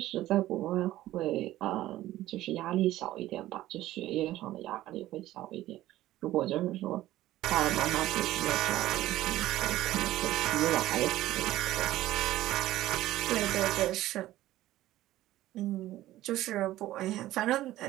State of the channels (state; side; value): quieter; left; 15.1 dB